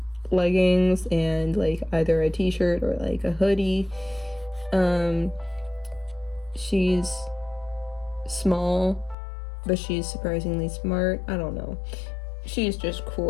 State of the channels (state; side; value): drops out; right; at 9.2 s